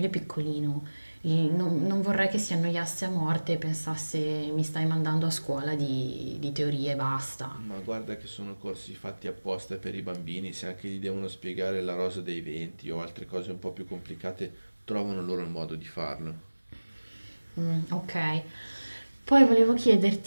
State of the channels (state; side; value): inverted; both; correlation -1.00